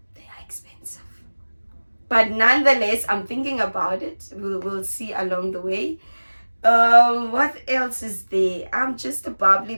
They are expensive. But nonetheless, I'm thinking about it. We'll see along the way. What else is there? I'm just a bubbly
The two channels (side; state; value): both; inverted; correlation -1.00